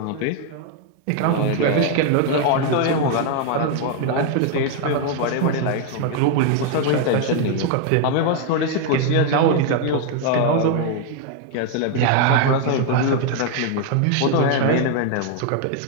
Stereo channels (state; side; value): different; both; correlation 0.00